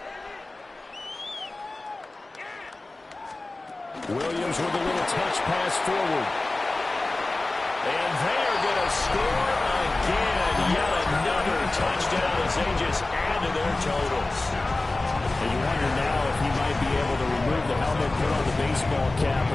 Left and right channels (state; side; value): quieter; right; 3.0 dB